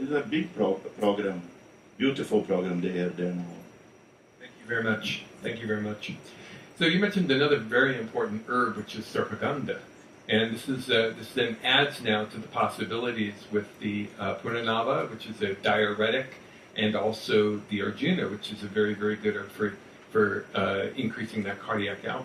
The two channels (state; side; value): identical; both; correlation 1.00